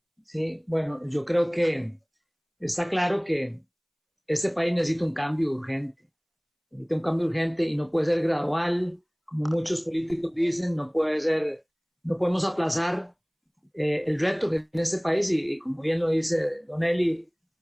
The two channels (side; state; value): both; identical; correlation 1.00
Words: Sí, bueno, yo creo que está claro que este país necesita un cambio urgente. Necesita un cambio urgente y no puede ser gradual, como muchos políticos dicen, no podemos aplazar el reto que tiene este país y como bien lo dice Don Eli,